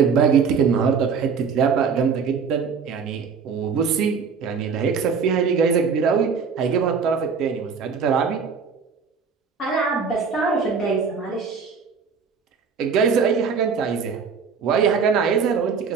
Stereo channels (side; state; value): left; quieter; 5.8 dB